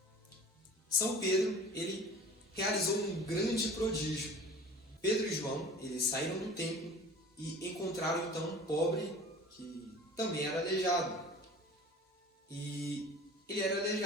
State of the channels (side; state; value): both; normal; correlation 0.43